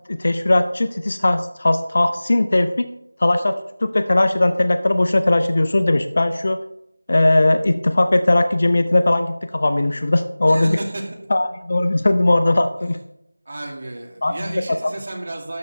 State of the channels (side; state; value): both; inverted; correlation -0.99